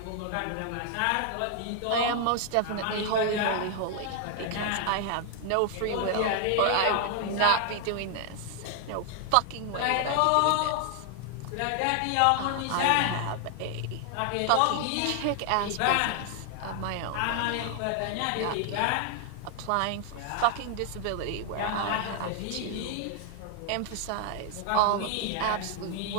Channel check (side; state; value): both; different; correlation 0.00